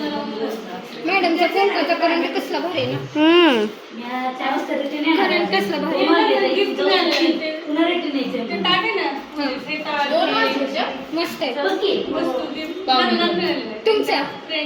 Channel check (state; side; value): identical; both; correlation 1.00